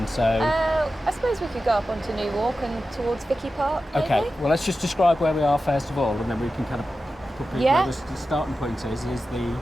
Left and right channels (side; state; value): both; normal; correlation 0.93